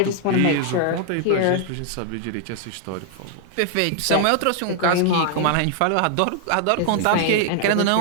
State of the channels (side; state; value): both; different; correlation 0.00